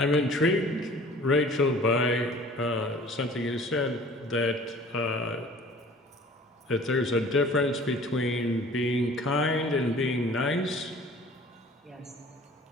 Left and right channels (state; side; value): normal; both; correlation 0.48